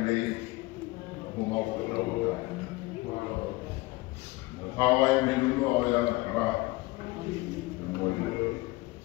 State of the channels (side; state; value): right; quieter; 21.4 dB